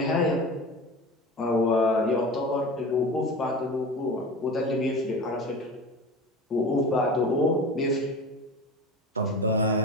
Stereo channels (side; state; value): both; normal; correlation 0.32